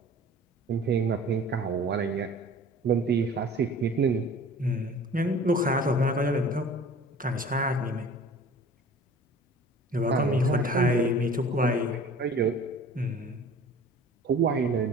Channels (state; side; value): normal; both; correlation 0.45